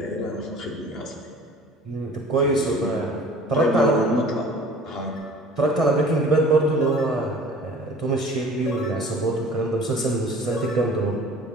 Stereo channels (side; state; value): both; normal; correlation 0.46